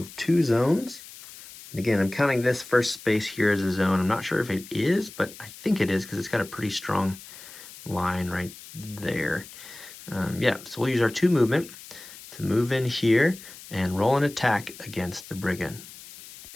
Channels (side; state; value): left; noise; hiss, 17 dB below the sound